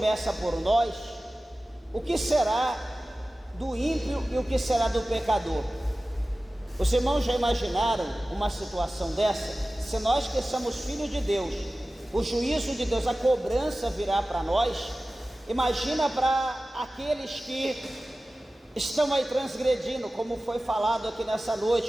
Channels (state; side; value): normal; both; correlation 0.96